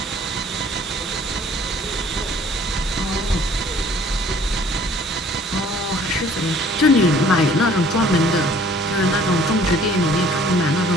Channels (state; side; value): normal; both; correlation 0.55